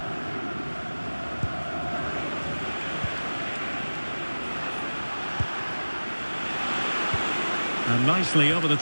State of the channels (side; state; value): both; inverted; correlation -1.00